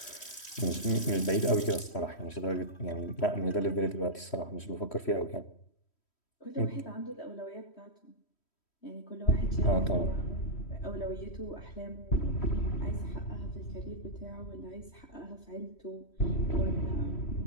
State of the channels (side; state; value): right; late; 3.1 ms